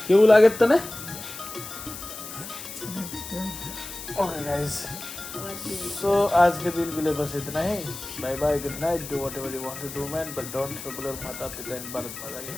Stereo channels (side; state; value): left; noise; hiss, 11 dB below the sound